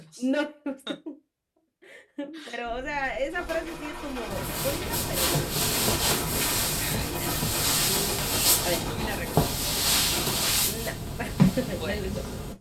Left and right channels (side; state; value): both; identical; correlation 1.00